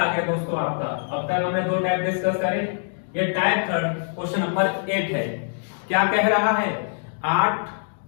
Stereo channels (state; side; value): silent; right; digital silence